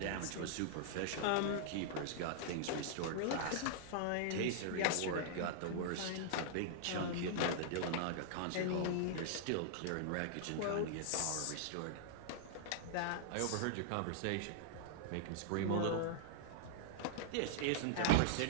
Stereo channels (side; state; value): both; different; correlation -0.01